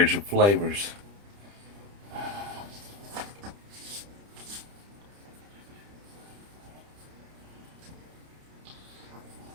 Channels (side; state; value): left; late; 30 ms